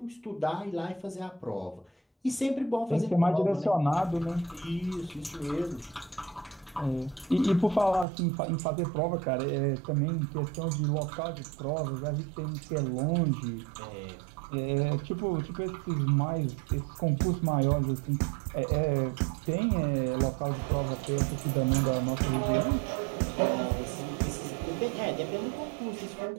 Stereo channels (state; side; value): drops out; left; at 8.1 s